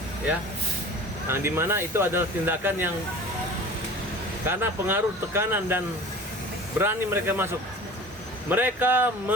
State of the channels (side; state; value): both; normal; correlation 0.40